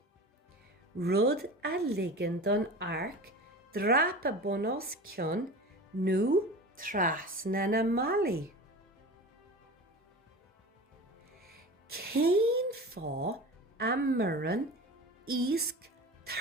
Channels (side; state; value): both; normal; correlation 0.33